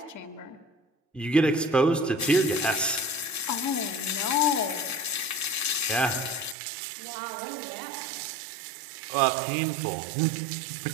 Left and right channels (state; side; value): drops out; left; at 6.6 s